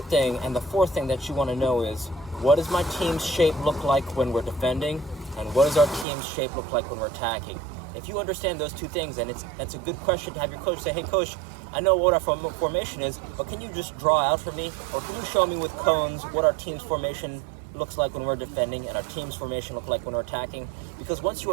thing and the fourth thing that you want to know is, what does my team's shape look like when we're defending, and what does our team's shape look like when we're attacking? If you understand those two things, and it's a good question to have your coach say, hey coach, I know what our formation is, but can you just draw out for me, or can you show me with cones what our team's formation looks like when we're defending and our team's formation look like when we're attacking? Because once you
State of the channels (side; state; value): left; drops out; at 6.1 s